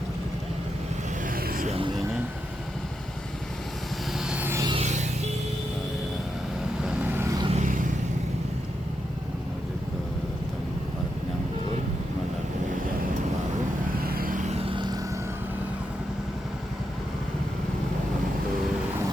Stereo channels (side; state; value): both; normal; correlation 0.85